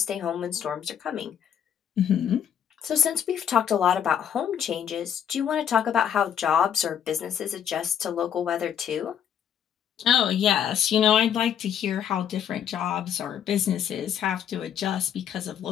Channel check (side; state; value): right; quieter; 8.9 dB